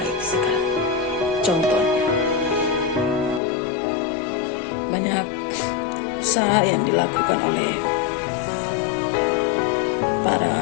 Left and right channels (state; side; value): drops out; right; at 3.4 s